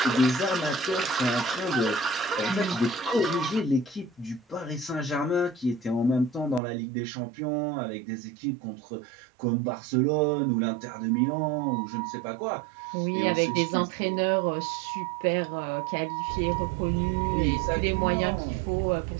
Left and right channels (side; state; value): left; drops out; at 6.6 s